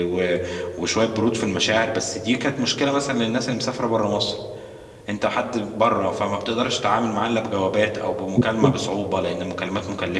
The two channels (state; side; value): identical; both; correlation 1.00